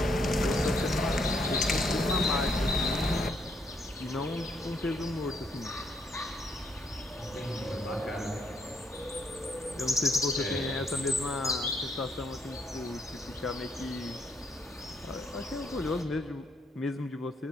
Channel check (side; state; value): both; normal; correlation 0.73